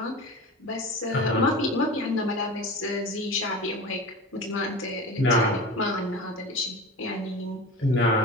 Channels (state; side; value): normal; both; correlation 0.32